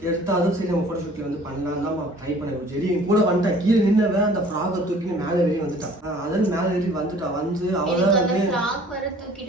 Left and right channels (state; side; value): normal; both; correlation 0.51